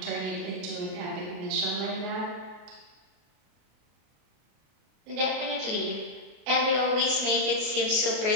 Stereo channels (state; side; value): late; left; 33 ms